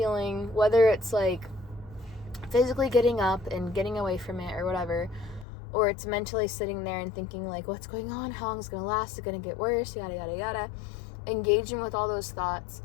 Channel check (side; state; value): right; drops out; at 5.5 s